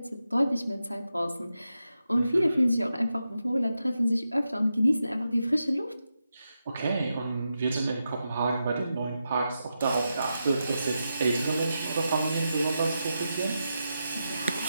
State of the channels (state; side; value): inverted; both; correlation -0.88